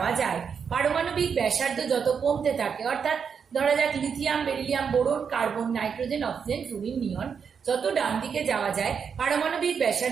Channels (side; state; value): left; quieter; 6.6 dB